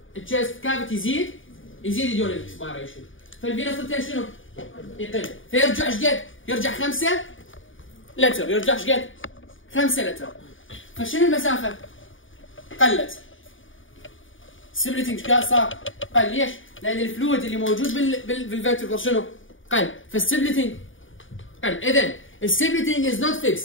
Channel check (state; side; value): late; right; 0.57 ms